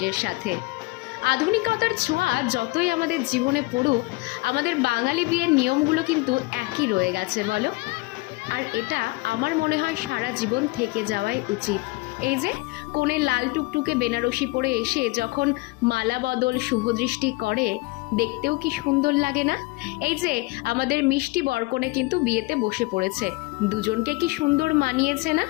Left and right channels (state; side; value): quieter; right; 23.8 dB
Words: সাথে। আধুনিকতার ছোঁয়া যতই আমাদের জীবনে পড়ুক, আমাদের বাঙালি বিয়ের নিয়মগুলো কিন্তু একই রয়ে গেছে বলো। আর এটা আমার মনে হয় সারা জীবন থেকে যাওয়াই উচিত। এই যে কনে লাল টুকটুকে বেনারসি পরে এসে যখন মালা বদল শুভদৃষ্টি করে, দেখতেও কি সুন্দর লাগে না? এই যে আমাদের মিষ্টি বরকনে কিন্তু বিয়েতে বসে পড়েছে, দুজনকে কি সুন্দর মানিয়েছে না?